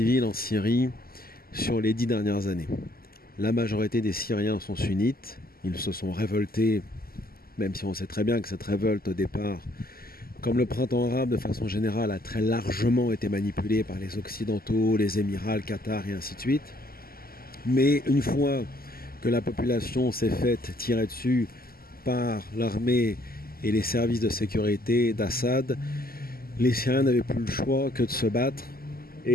en Syrie sur les 10 dernières années. La majorité des Syriens sont sunnites, ils se sont révoltés, même si on sait très bien que cette révolte au départ, comme le printemps arabe de façon générale, a très largement été manipulée par les Occidentaux, les Émirats, le Qatar et ainsi de suite. Mais une fois que la population s'est faite tirer dessus par l'armée et les services de sécurité d'Assad, les Syriens n'avaient plus le choix que de se battre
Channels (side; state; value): right; late; 0.43 ms